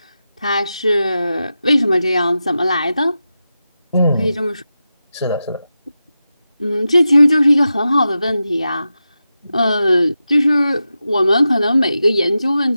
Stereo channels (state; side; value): inverted; both; correlation -0.91